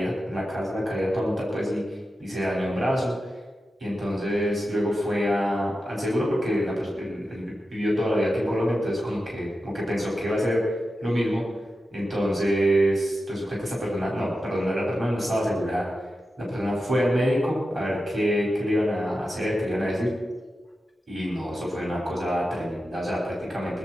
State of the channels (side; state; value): both; normal; correlation 0.91